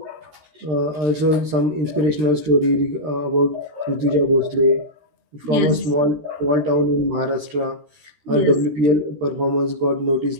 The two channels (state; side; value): late; left; 13 ms